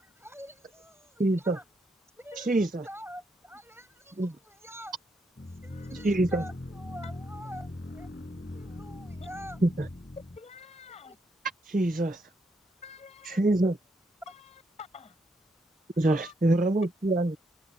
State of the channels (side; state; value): both; normal; correlation 0.78